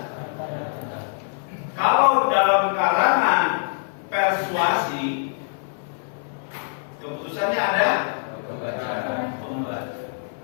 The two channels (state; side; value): silent; right; 62 dB below the other